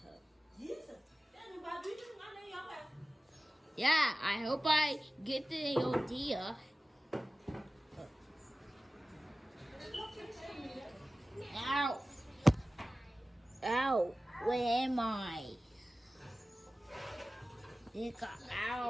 Jesus. Daddy, why do you think I know your way? Yeah, I hope I get the idea. Ow. Ow. Where am I?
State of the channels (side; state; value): both; normal; correlation 0.96